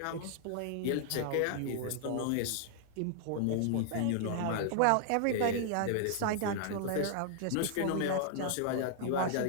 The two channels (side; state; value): both; different; correlation -0.01